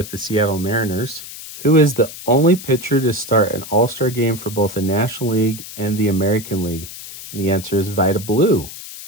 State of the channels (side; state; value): left; noise; hiss, 13 dB below the sound